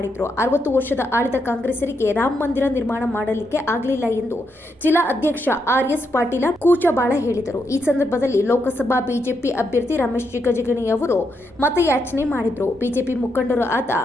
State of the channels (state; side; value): normal; both; correlation 0.81